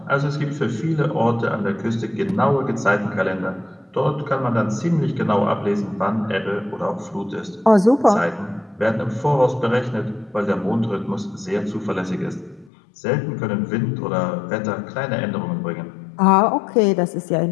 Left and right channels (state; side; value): drops out; right; at 12.7 s